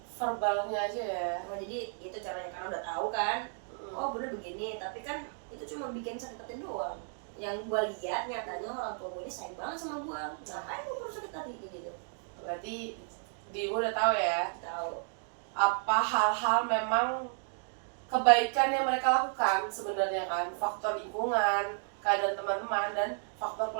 verbalnya aja ya? Nah, jadi itu caranya, karena udah tahu kan. Oh bunda begini, tapi kan itu cuma bikin sakit hati doang. Yang gue lihat nyatanya orang tua gue ini sayang banget sama gue. Ngapain gue perlu sakit hati gitu? Berarti dirimu udah tahu ya? Tahu. Apa hal-hal memang kebaikan yang mereka lakukan sebenarnya kan, faktor lingkungan, keadaan teman-teman, dan faktor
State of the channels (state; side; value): silent; left; 56 dB below the other